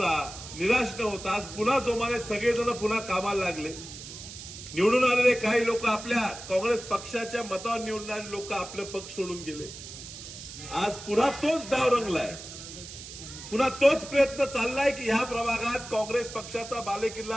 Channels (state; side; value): noise; right; hiss, 12 dB below the sound